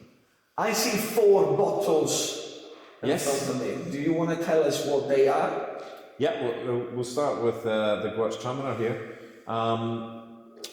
I see 4 bottles. Yes. Do you want to tell us what they are? Yeah, we'll start with the Gewürztraminer here.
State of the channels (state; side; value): identical; both; correlation 1.00